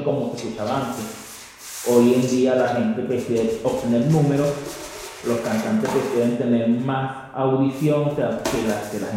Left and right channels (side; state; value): both; identical; correlation 1.00